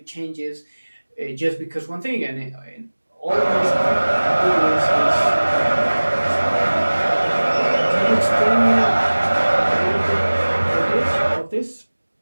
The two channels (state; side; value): inverted; both; correlation -1.00